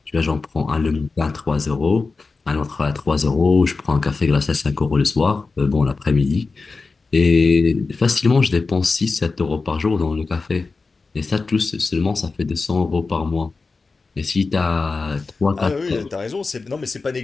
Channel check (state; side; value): quieter; right; 4.1 dB